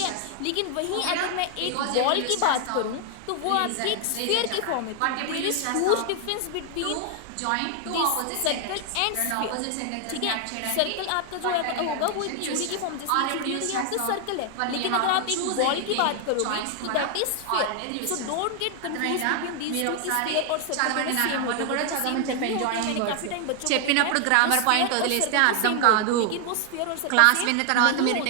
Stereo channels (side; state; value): both; different; correlation 0.00